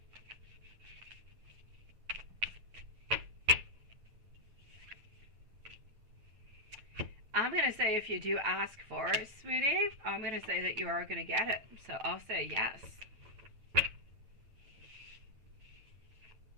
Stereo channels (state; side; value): late; left; 9.0 ms